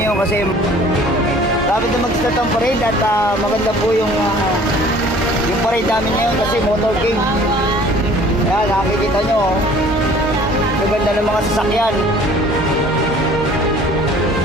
kasi dapat na mag-start ang parade at maganda po yung parade namin ngayon kasi motorcade. Ayan, nakikita nyo, maganda ng mga sasakyan.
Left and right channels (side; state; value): both; normal; correlation 0.51